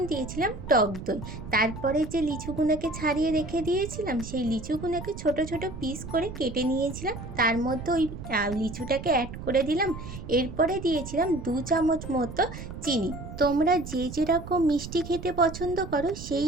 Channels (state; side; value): noise; right; rumble, 10 dB below the sound